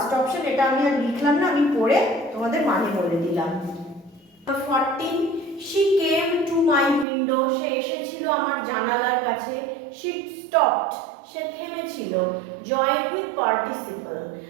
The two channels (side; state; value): left; drops out; at 7.1 s